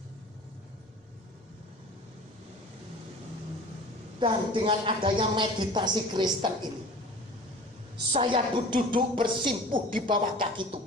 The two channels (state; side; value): normal; both; correlation 0.41